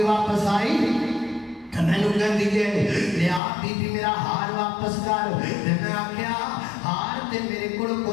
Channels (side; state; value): right; drops out; at 3.4 s